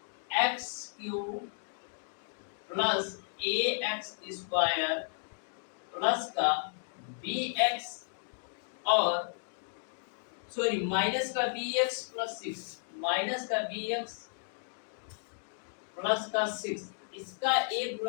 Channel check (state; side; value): silent; right; digital silence